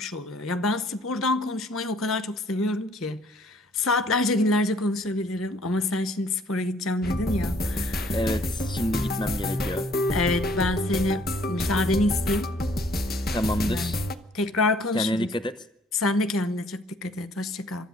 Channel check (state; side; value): normal; both; correlation 0.60